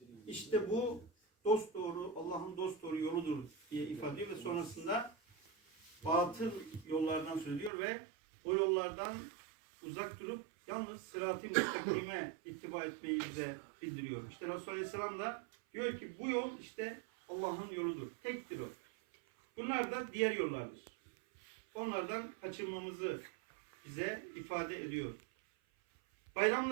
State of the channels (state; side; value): drops out; left; at 7.7 s